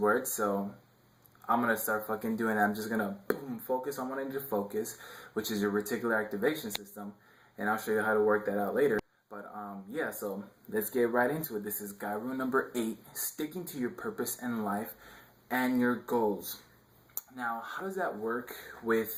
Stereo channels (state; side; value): identical; both; correlation 1.00